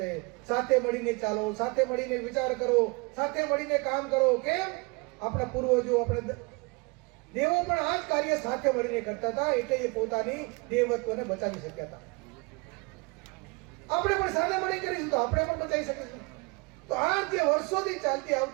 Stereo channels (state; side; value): quieter; left; 28.6 dB